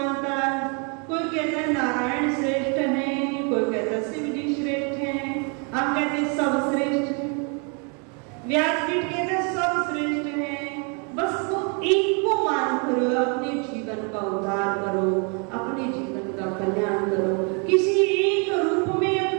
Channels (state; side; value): quieter; left; 36.7 dB